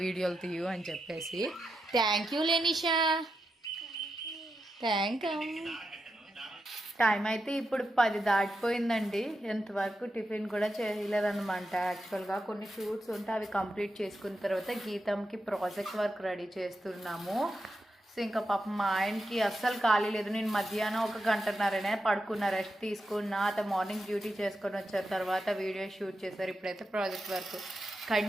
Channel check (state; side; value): normal; both; correlation 0.87